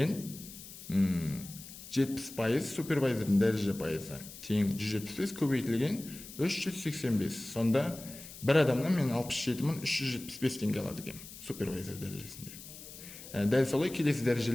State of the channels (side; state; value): left; noise; hiss, 15 dB below the sound